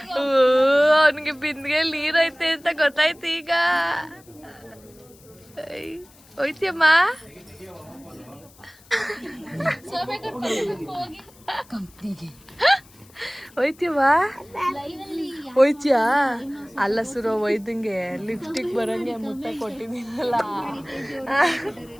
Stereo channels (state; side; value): noise; left; hiss, 26 dB below the sound